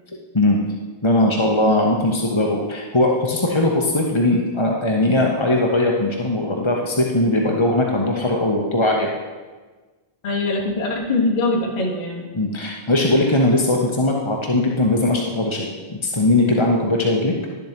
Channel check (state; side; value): late; right; 1.3 ms